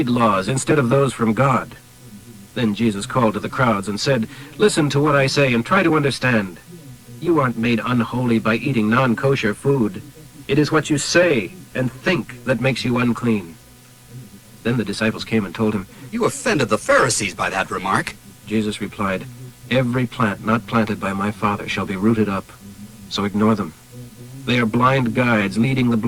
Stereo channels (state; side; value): identical; both; correlation 1.00